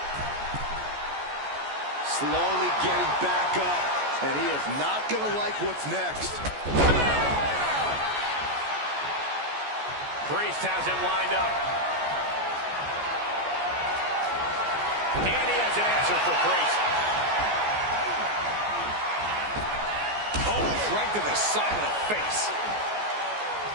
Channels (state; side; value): late; left; 14 ms